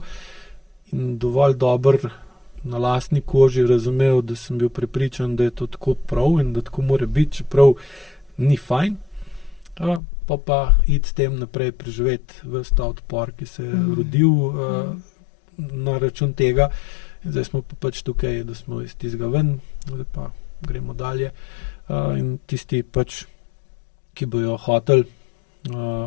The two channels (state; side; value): drops out; right; at 10.0 s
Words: in dovolj dobro na lastni koži razumel, da sem bil prepričan, da je to tako prav in da tako mora biti, čeprav ni fajn. Pa iti s tem naprej preživeti ves ta odpor, ki se je rodil na račun tega. In zdaj smo pa pač tukaj, da smo iz tistega ven, zdaj pa gremo dalje. In tisti pač, ki bojo hoteli